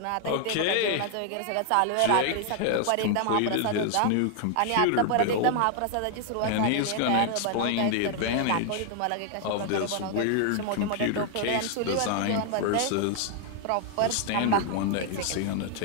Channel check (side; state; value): both; different; correlation 0.00